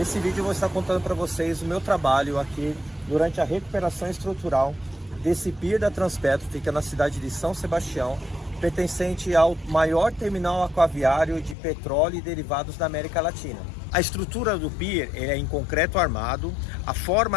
vídeo eu vou estar contando para vocês o meu trabalho aqui durante a recuperação estrutural desse pier da Transpetro, fica na cidade de São Sebastião, pertencente ao maior terminal aquaviário de petróleo e derivados da América Latina. A estrutura do pier é em concreto armado, a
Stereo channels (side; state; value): right; drops out; at 11.6 s